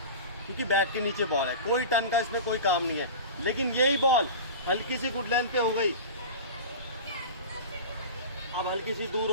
क्योंकि बैट के नीचे बॉल है, कोई टर्न का इसमें कोई काम नहीं है। लेकिन यही बॉल हल्की सी गुड लेंथ पे हो गई, अब हल्की सी दूर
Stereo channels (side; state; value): both; inverted; correlation -0.32